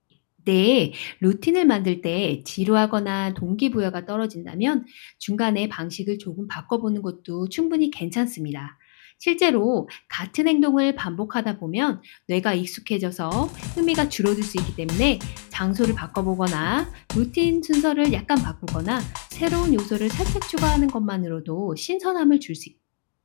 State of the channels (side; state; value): right; silent; 59 dB below the other